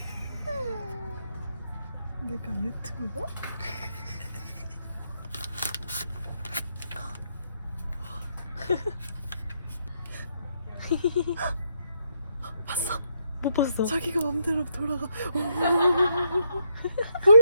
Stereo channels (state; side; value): inverted; both; correlation -0.76